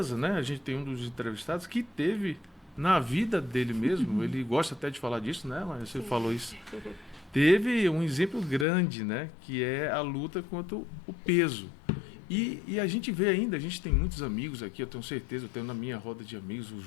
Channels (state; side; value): drops out; right; at 8.7 s